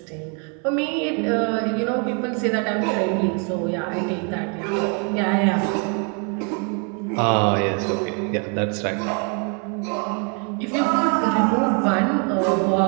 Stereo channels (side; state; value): left; quieter; 37.4 dB